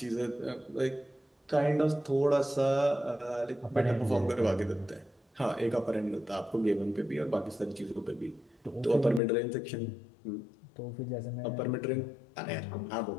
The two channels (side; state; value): right; drops out; at 9.2 s